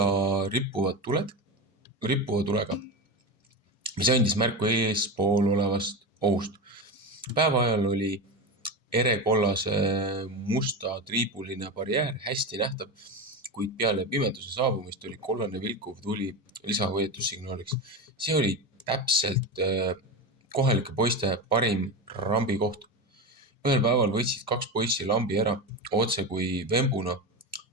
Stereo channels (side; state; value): both; normal; correlation 0.20